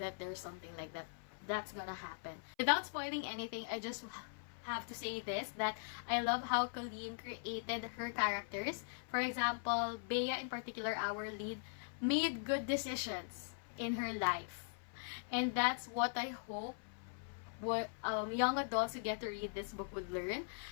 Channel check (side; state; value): right; silent; 50 dB below the other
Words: there's something like that that's gonna happen. Without spoiling anything, I just have to say this, that I love how Colleen created her characters. For example, Bea in particular, our lead, made good decisions in her life. And that's what I hope what young adults who get to read this book would learn.